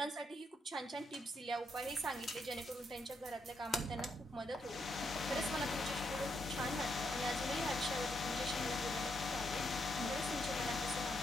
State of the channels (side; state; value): both; normal; correlation 0.79